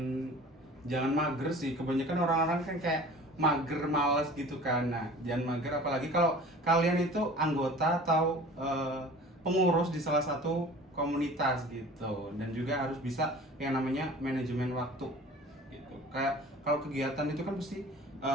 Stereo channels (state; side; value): normal; both; correlation 0.43